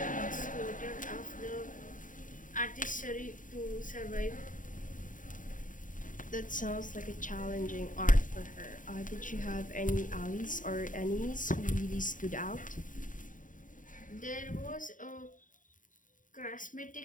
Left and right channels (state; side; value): late; right; 0.38 ms